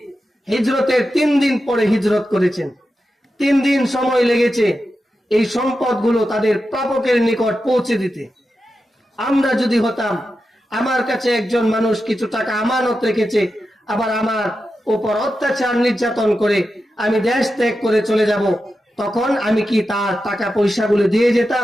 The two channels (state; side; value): normal; both; correlation 0.90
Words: হিজরতের 3 দিন পরে হিজরত করেছেন। 3 দিন সময় লেগেছে এই সম্পদগুলো তাদের প্রাপকের নিকট পৌঁছে দিতে। আমরা যদি হতাম, আমার কাছে একজন মানুষ কিছু টাকা আমানত রেখেছে, আবার আমার উপর অত্যাচার নির্যাতন করে আমি দেশ ত্যাগ করে চলে যাব, তখন আমি কি তার টাকা পয়সাগুলো দিয়ে